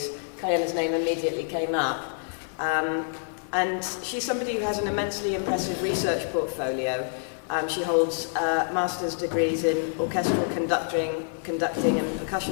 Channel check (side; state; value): right; silent; digital silence